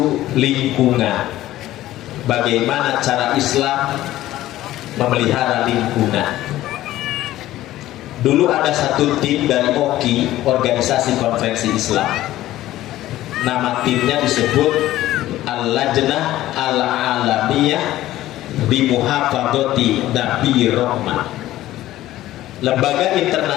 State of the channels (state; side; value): quieter; right; 14.9 dB